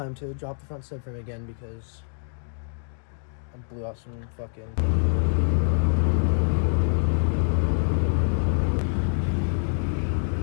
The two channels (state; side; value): silent; right; digital silence